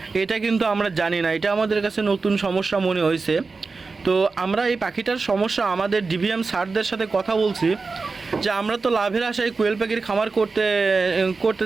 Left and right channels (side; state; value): left; quieter; 4.2 dB